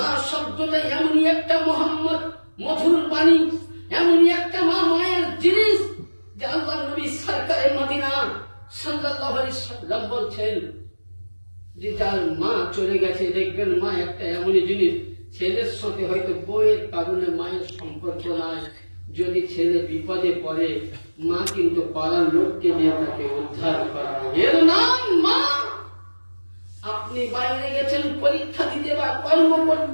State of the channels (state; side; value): inverted; both; correlation -1.00